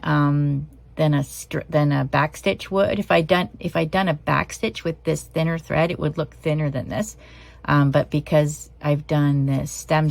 a back stitch would. If I'd done a back stitch with this thinner thread, it would look thinner than this. But because I've done this stem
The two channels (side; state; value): both; identical; correlation 1.00